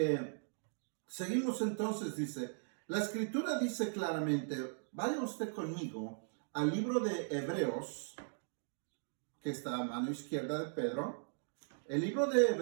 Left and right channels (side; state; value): left; silent; digital silence